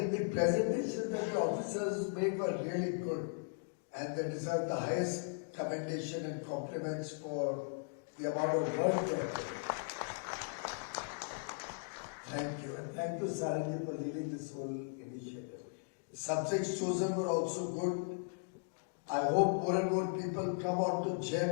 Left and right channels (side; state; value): right; silent; digital silence